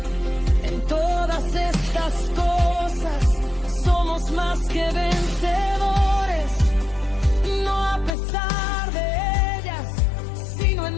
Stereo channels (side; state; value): right; drops out; at 8.2 s